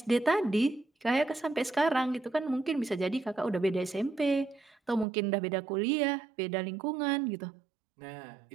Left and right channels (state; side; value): drops out; left; at 5.1 s